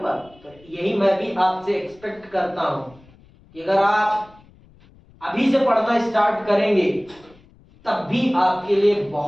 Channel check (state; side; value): noise; left; rumble, 27 dB below the sound